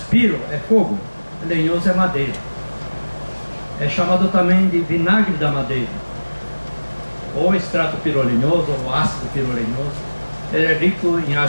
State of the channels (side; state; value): both; inverted; correlation -1.00